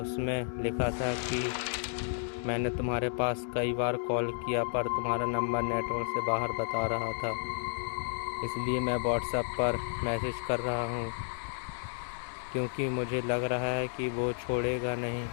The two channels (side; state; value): right; silent; digital silence